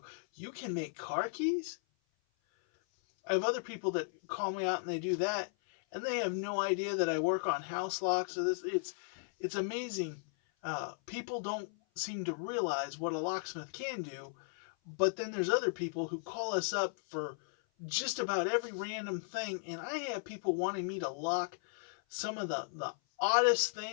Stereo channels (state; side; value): silent; right; 54 dB below the other